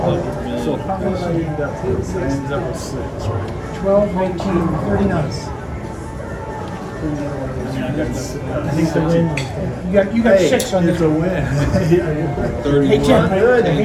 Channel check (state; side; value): identical; both; correlation 1.00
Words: So million. how much I ended up with? I ended up with 6, right? 12, 19, 39. I mean, I got I think the win. You got 6 on It's this. a win. 31. Hey, Tim, I